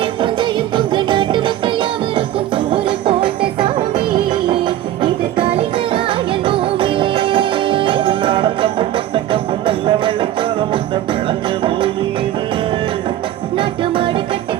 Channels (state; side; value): quieter; left; 12.8 dB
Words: புஞ்சையும் பொங்க நாட்டு மக்கள் யாவருக்கும் சோறு போட்ட சாமி. இது கலைஞராயன் பூமி. நாடகமும் முட்டக்கமும் நல்ல வெள்ளச்சோள முட்டை விளைஞ்ச பூமி இது. நாட்டு மாடு கட்டி